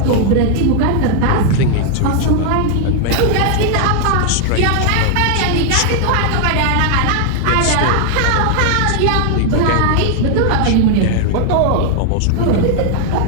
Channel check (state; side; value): different; both; correlation 0.00